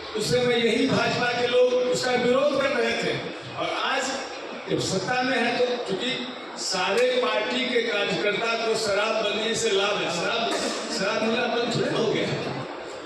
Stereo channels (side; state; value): both; identical; correlation 1.00